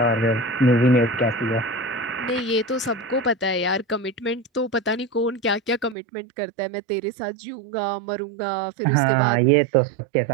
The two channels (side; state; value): left; drops out; at 6.0 s